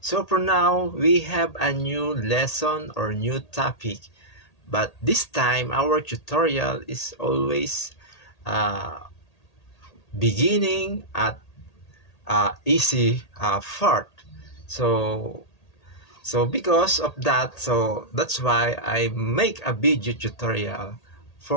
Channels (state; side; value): late; right; 1.8 ms